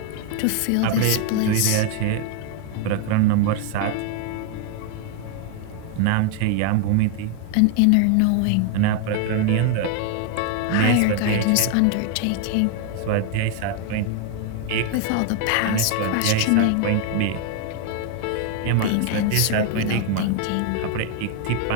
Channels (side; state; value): both; different; correlation 0.01